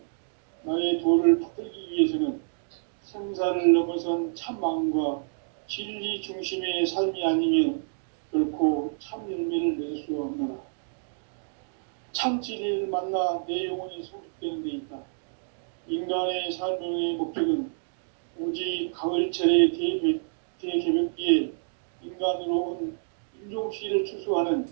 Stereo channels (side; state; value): left; silent; digital silence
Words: 나의 도를 받들기 위해서는 생사를 넘어선 참 마음과 진리 중심의 삶이 아니면 결코 참 열매를 맺을 수가 없노라. 참 진리를 만나 내 영혼이 성숙되는 데 있다. 인간의 삶의 목적은 오직 가을철의 대개벽기에 인간으로 온 인종시를 추수하는